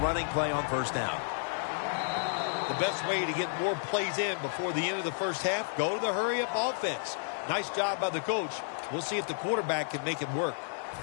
play on first down. The best way to get more plays in before the end of the first half, go to the hurry-up offense. Nice job by the coach. We'll see if the quarterback can make it work.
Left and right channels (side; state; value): right; silent; digital silence